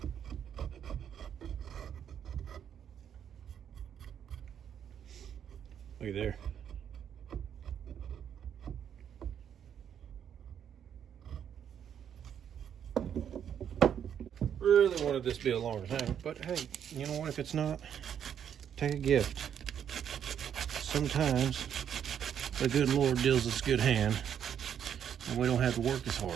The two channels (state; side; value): quieter; left; 8.8 dB